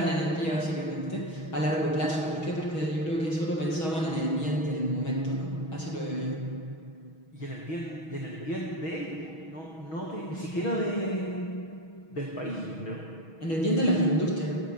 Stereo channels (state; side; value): late; right; 6.3 ms